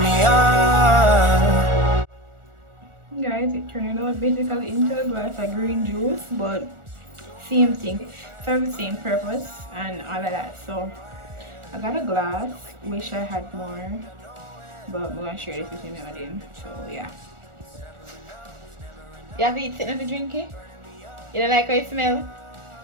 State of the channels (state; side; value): late; left; 1.4 ms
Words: Guys, it turned out basically into a glass of green juice, but same thing, serve the same purpose and all of that. So I got a glass, wish I had more, but I'm gonna share this with you now then. So yeah. You have it sitting to drink it? You don't like how it smells?